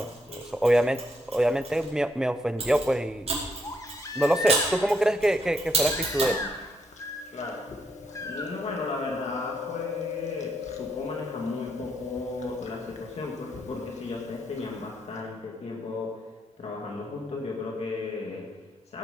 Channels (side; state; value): both; normal; correlation 0.74